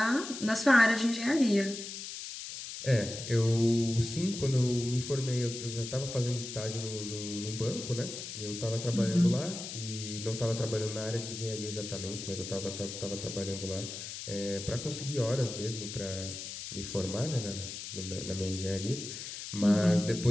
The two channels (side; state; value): left; noise; hiss, 8 dB below the sound